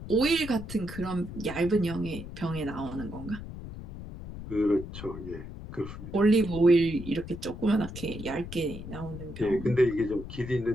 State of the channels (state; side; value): noise; left; rumble, 11 dB below the sound